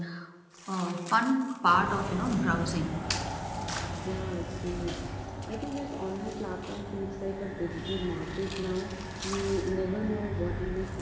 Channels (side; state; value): both; identical; correlation 1.00